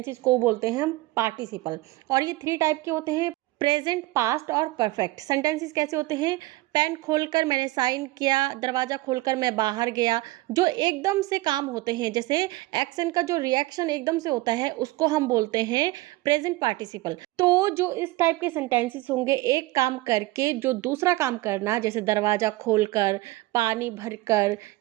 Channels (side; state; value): left; quieter; 19.4 dB